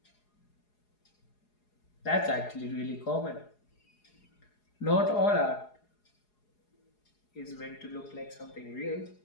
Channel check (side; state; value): right; late; 4.8 ms